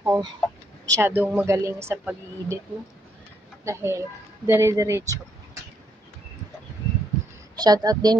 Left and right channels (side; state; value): both; normal; correlation 0.74